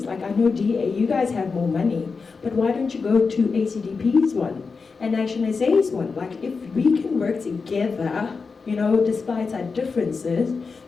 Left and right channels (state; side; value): quieter; right; 4.8 dB